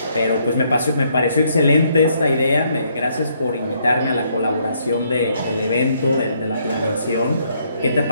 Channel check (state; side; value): inverted; both; correlation -0.71